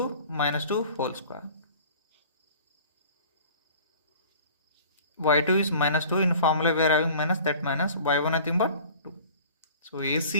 whole square. y2 is minus 2, in formula we are having minus, that minus y1 nothing but 2. So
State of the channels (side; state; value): both; inverted; correlation -0.45